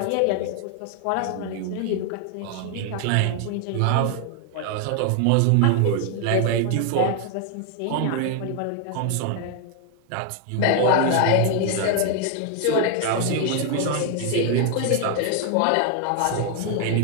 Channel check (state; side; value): different; both; correlation 0.00